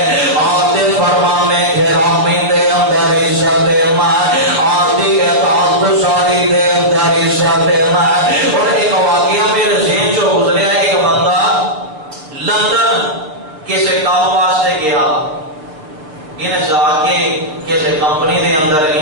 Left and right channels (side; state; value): left; late; 6.5 ms